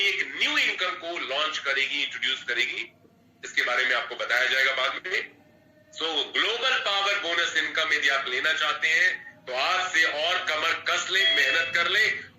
एक न्यू इनकम को लॉन्च करेगी, इंट्रोड्यूस करेगी। इसके बारे में आपको बताया जाएगा बाद में। सो ग्लोबल पावर बोनस इनकम यदि आप लेना चाहते हैं तो आज से और कमर कस ले, मेहनत कर ले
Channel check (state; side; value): identical; both; correlation 1.00